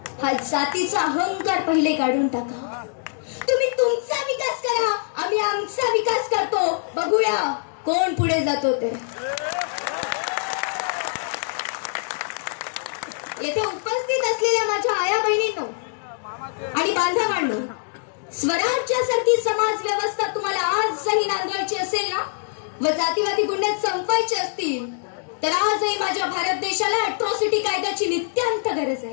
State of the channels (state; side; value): silent; right; digital silence